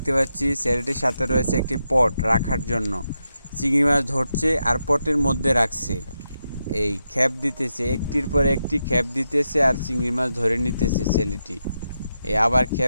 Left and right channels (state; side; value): inverted; both; correlation -0.86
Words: পাচ্ছি। ছেলেটির সাথে রয়েছে একটি পট রাখার জন্য। চিংড়ি মাছ ধরছে আর পটের মধ্যে রাখছে। এই খেপ দিতেছে, একটির পর একটি খেপ দিতেছে আর চিংড়ি মাছ ধরে নিতেছে ছেলেটি। এই আবার